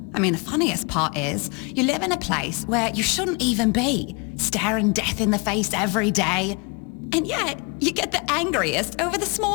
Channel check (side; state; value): right; quieter; 31.7 dB